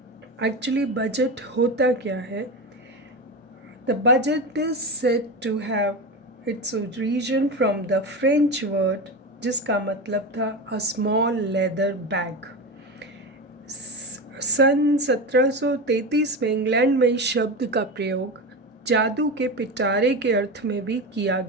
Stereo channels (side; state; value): both; normal; correlation 0.22